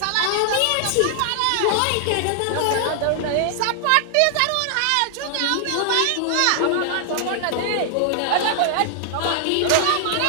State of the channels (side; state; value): both; different; correlation 0.00